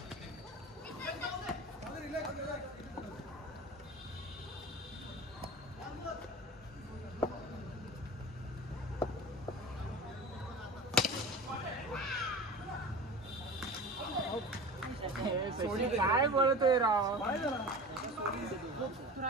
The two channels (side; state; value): both; normal; correlation 0.34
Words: काय बोलतोय राव? तू